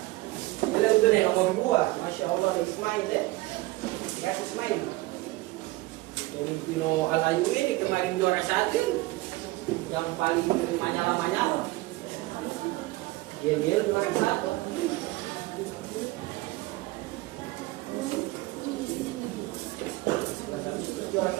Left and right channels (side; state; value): left; quieter; 20.1 dB